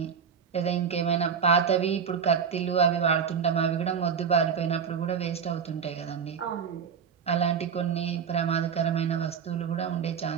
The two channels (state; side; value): quieter; left; 6.9 dB